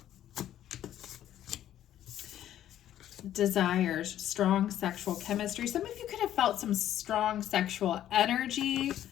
Desires, strong sexual chemistry. Some of you could have felt some strong sexual energy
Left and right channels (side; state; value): right; quieter; 11.7 dB